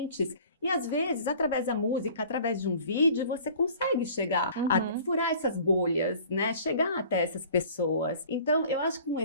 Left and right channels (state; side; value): inverted; both; correlation -0.48